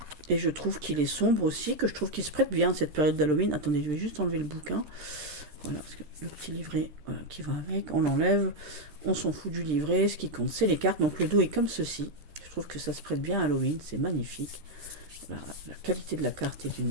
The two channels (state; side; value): late; left; 13 ms